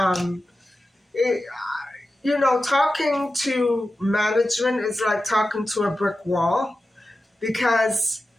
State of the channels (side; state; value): both; normal; correlation 0.93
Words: It, talking to management is like talking to a brick wall because